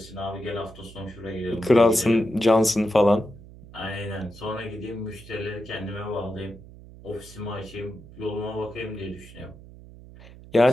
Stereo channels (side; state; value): right; noise; hum, 19 dB below the sound